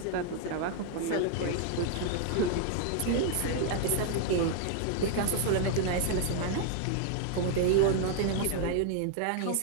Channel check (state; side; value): different; both; correlation 0.00